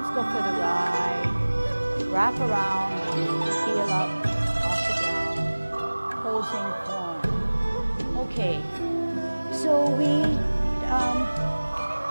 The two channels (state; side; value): inverted; both; correlation -1.00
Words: go for the ride, wrap around, heel up, off the ground, posing form. Okay, so we